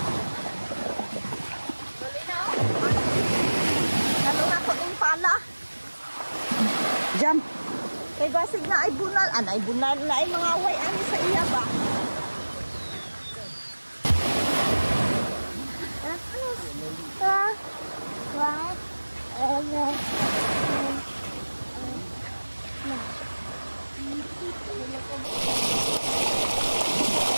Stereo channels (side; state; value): both; inverted; correlation -1.00